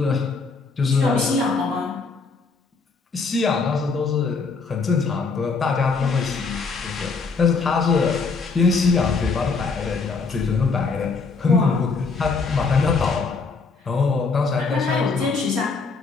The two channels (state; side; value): quieter; right; 4.5 dB